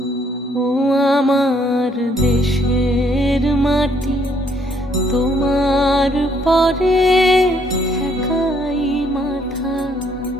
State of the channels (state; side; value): normal; both; correlation 0.67